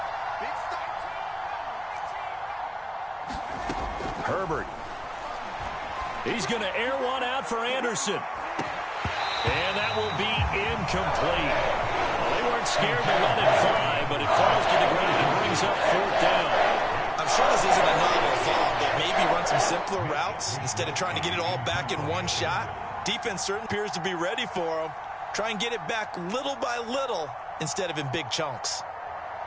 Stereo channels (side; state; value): both; identical; correlation 1.00